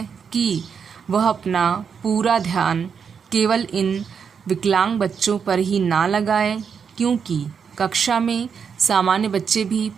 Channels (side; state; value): left; quieter; 6.6 dB